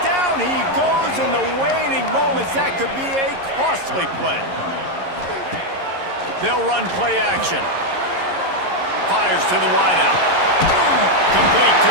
Down he goes in the waning moments. That could be a costly play. They'll run play action. Fires to the wideout. Complete to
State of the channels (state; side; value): late; left; 11 ms